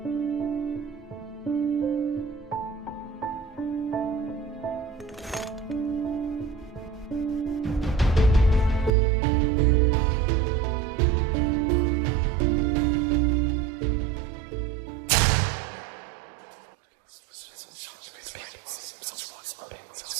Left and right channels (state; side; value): drops out; left; at 8.9 s